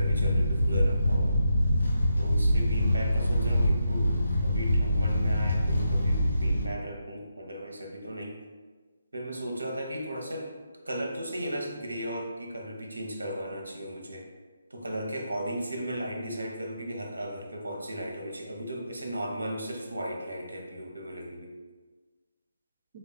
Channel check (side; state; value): both; inverted; correlation -0.83